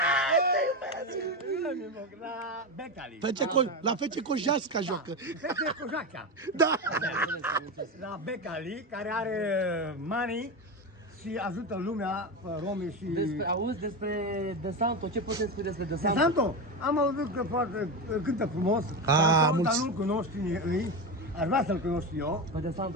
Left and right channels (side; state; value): both; normal; correlation 0.17